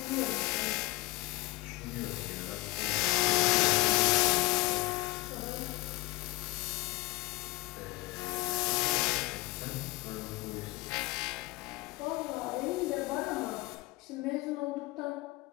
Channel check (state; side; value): quieter; right; 21.5 dB